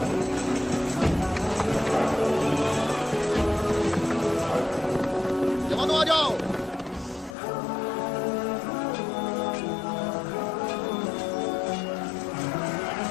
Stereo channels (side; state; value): right; drops out; at 7.4 s